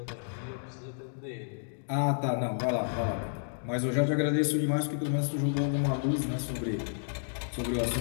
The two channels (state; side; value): silent; right; digital silence